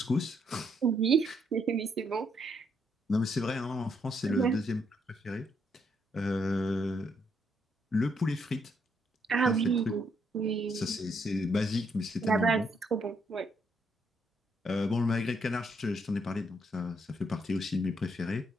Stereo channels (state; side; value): normal; both; correlation 0.74